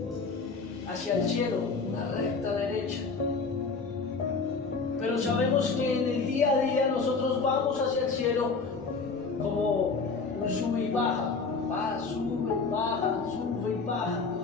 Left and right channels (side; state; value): right; quieter; 4.5 dB